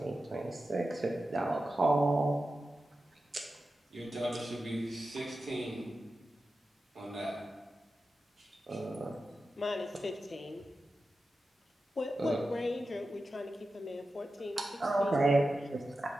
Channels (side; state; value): both; normal; correlation 0.92